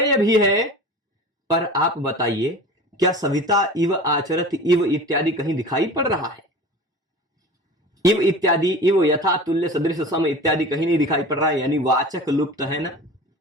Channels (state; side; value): normal; both; correlation 0.37